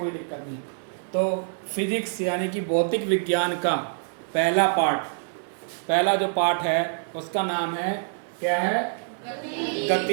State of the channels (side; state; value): left; silent; 61 dB below the other